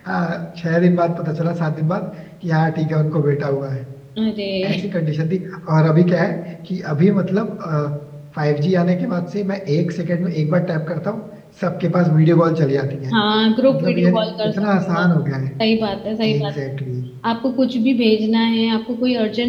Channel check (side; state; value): both; identical; correlation 1.00